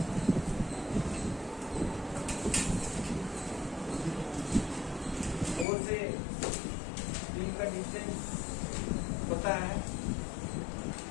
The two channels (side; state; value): right; drops out; at 5.7 s